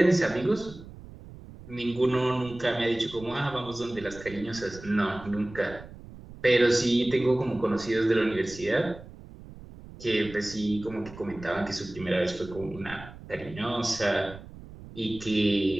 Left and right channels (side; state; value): right; noise; rumble, 17 dB below the sound